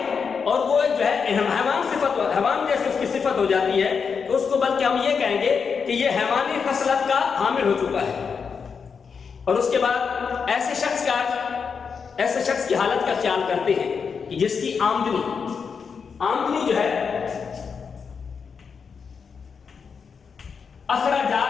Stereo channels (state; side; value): quieter; right; 5.9 dB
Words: और वो जो है हैवान जैसे उसकी सिफत हो जाती है, तो उसको बल्कि हम ये कहेंगे कि ये हैवानी खसलत का हामिल हो चुका है। और उसके बाद ऐसे शख्स की हालत का ख्याल करते हैं कि जिसकी आमदनी जो है